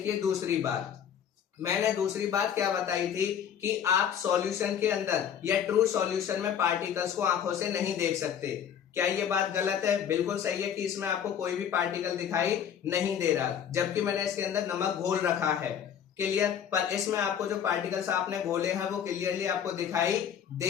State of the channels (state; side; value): quieter; right; 8.7 dB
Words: दूसरी बात, मैंने दूसरी बात क्या बताई थी कि आप सॉल्यूशन के अंदर या ट्रू सॉल्यूशन में पार्टिकल्स को आंखों से नहीं देख सकते। क्या ये बात गलत है, बिल्कुल सही है कि इसमें आपको कोई भी पार्टिकल दिखाई नहीं दे रहा, जबकि मैंने इसके अंदर नमक घोल रखा है। क्लियर, पर इसमें आपको जो पार्टिकल्स आपने घोले हैं वो क्लियरली आपको दिखाई